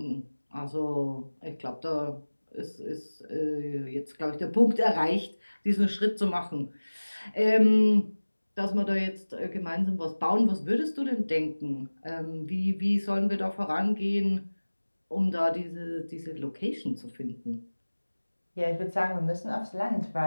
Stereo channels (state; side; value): inverted; both; correlation -1.00